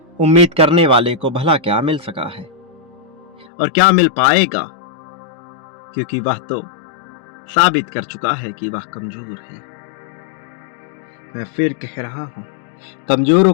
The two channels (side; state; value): right; drops out; at 3.5 s